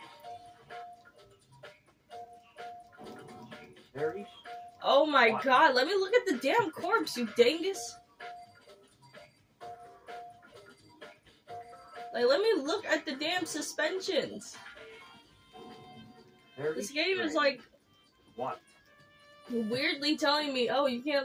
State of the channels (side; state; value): both; identical; correlation 1.00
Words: Very. Oh my What? god, let me look at the damn corpse, you dingus. Like, let me look at the damn suspensions. Very This game is strange. like What? weirdly telling me, oh, you